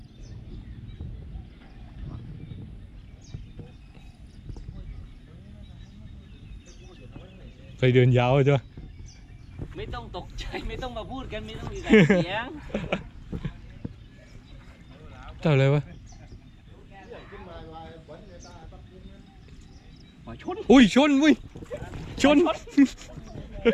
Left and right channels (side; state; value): both; identical; correlation 1.00